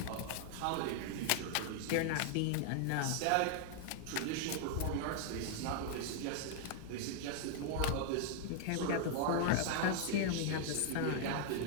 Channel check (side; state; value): both; different; correlation 0.00